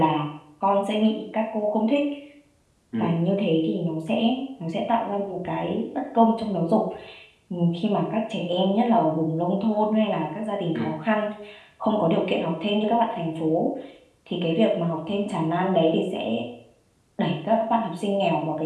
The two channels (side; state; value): both; identical; correlation 1.00